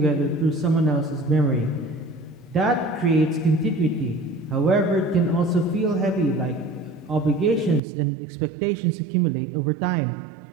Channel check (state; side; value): drops out; left; at 7.8 s